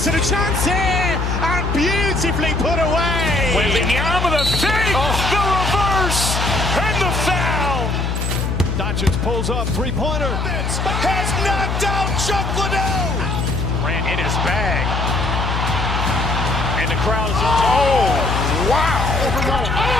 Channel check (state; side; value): noise; left; hum, 1 dB below the sound